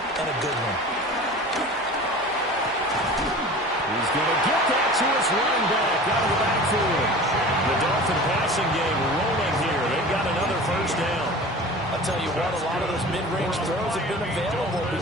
a good one. He's going to get that to his running back out of the backfield. The Dolphin passing game rolling here. They've got another 1st down. I'll tell you what, a lot of those mid-range throws have been available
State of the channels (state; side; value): noise; right; hum, 27 dB below the sound